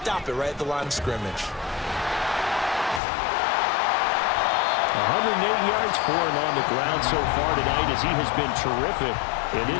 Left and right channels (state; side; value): drops out; right; at 3.0 s